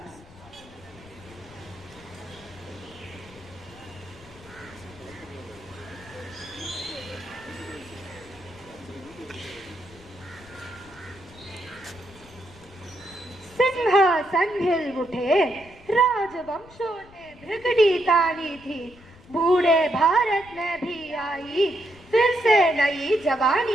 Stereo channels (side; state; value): left; noise; rumble, 22 dB below the sound